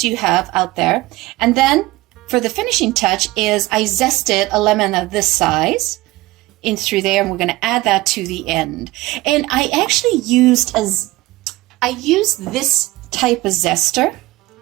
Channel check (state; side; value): quieter; left; 19.2 dB